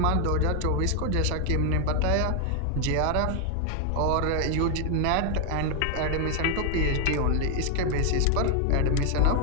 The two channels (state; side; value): different; both; correlation 0.00